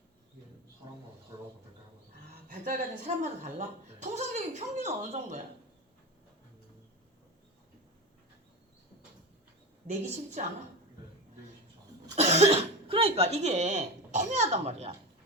사람마다 달라서 발달 과정 사람마다 달라? 통상적인 평균은 어느 정도야? 내기 쉽지 않아? 네, 내기 쉽지 않아요. 그러니까 이게 애매하단 말이야.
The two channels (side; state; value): both; normal; correlation 0.22